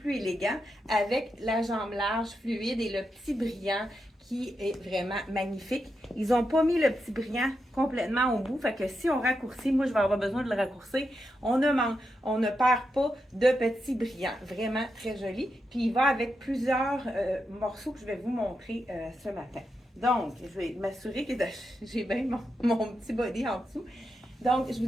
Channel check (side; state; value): both; normal; correlation 0.86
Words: élégant avec la jambe large, fluide et le petit brillant qui est vraiment magnifique. Ils n'ont pas mis le petit brillant complètement au bout, fait que si on raccourcit, moi je vais avoir besoin de le raccourcir, on ne perd pas de petit brillant. Vraiment très joli. Puis il va avec plusieurs morceaux que je vais vous montrer ce matin. Donc, je vais m'assurer que j'ai bien mon petit body en dessous. Donc, je vous